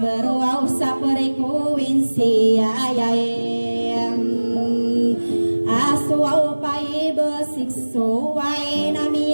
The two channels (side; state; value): both; inverted; correlation -1.00